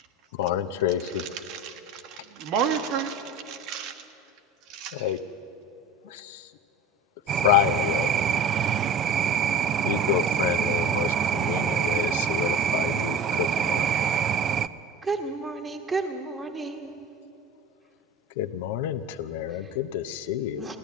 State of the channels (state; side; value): normal; both; correlation 0.33